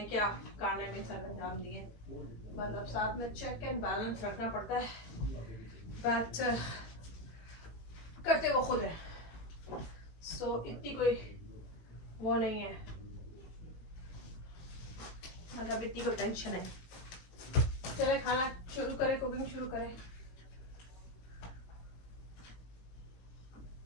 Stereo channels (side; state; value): right; late; 18 ms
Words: क्या खाने में सर अंजाम दिए, मतलब साथ में चेक एंड बैलेंस रखना पड़ता है, बट करते वो खुद है, सो इतनी कोई वो नहीं है, मतलब इतनी कोई टेंशन है। चले खाना शुरू करें, कुकिंग शुरू करें।